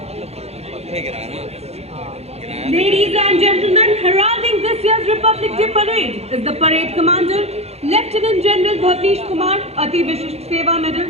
Ladies and gentlemen, heralding this year's Republic Day Parade is the parade commander, Lieutenant General Bhavnish Kumar, Ati Vishisht Seva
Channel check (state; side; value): late; left; 0.30 ms